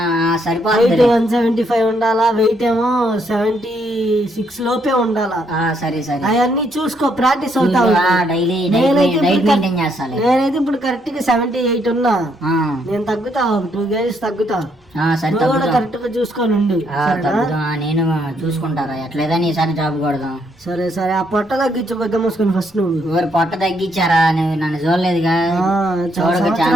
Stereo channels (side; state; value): both; normal; correlation 0.73